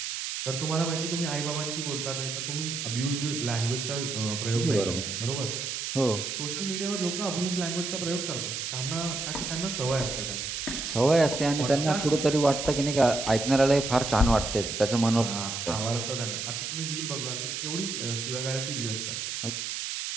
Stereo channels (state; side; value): noise; right; hiss, 4 dB below the sound